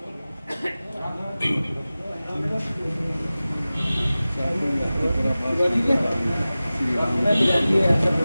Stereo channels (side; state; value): both; inverted; correlation -0.97